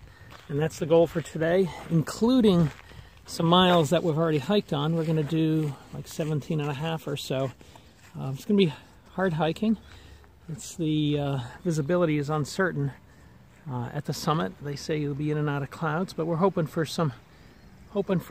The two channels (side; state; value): both; identical; correlation 1.00